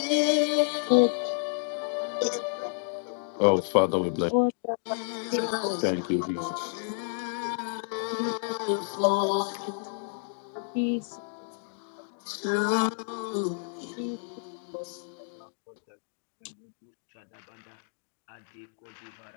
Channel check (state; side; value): silent; right; digital silence